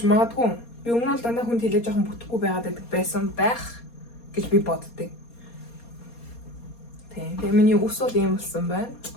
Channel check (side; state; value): right; late; 4.2 ms